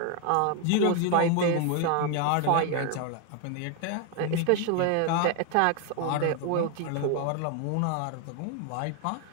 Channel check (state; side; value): different; both; correlation 0.01